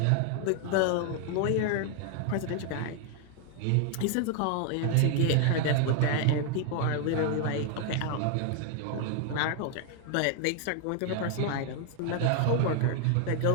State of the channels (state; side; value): different; both; correlation 0.00